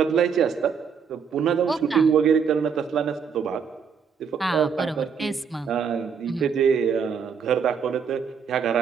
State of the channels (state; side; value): quieter; left; 6.5 dB